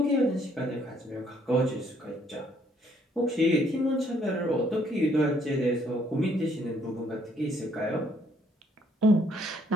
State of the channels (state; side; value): normal; both; correlation 0.66